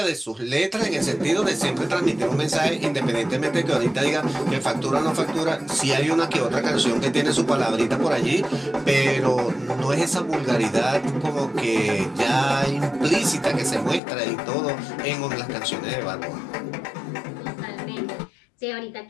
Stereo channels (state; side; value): drops out; right; at 14.0 s